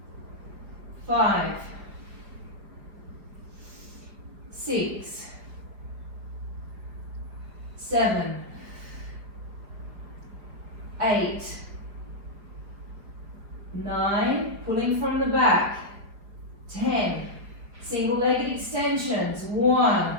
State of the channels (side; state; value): left; late; 5.0 ms